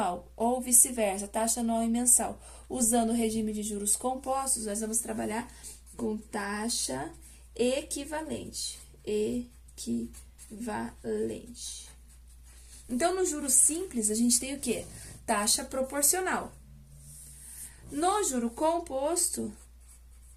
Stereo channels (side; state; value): both; identical; correlation 1.00